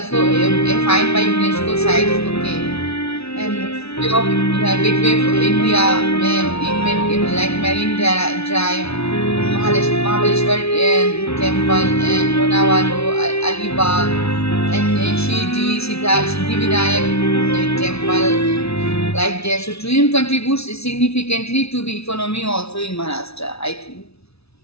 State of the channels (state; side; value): late; right; 0.79 ms